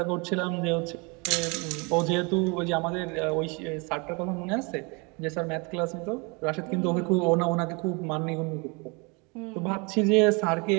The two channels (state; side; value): quieter; left; 30.4 dB